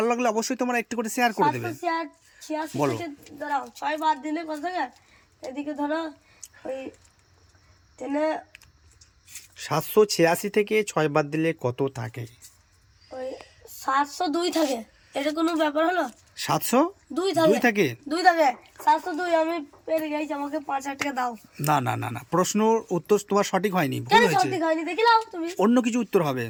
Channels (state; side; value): identical; both; correlation 1.00